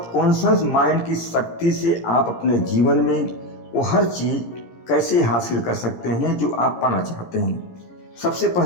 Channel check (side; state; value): right; late; 17 ms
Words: माइंड की शक्ति से आप अपने जीवन में वो हर चीज़ कैसे हासिल कर सकते हैं जो आप पाना चाहते हैं। सबसे